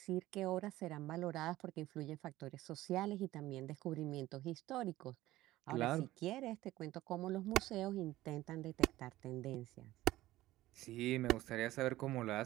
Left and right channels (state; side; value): quieter; left; 16.2 dB